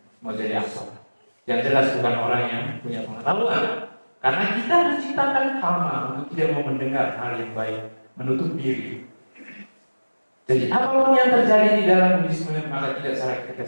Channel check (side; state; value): both; inverted; correlation -1.00